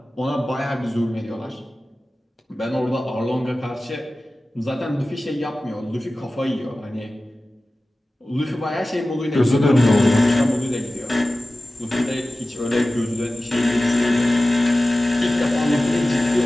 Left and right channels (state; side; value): normal; both; correlation 0.96